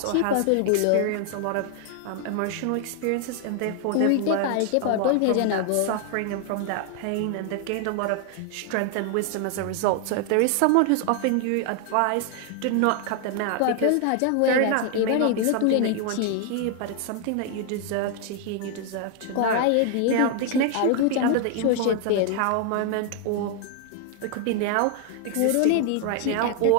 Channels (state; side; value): different; both; correlation 0.00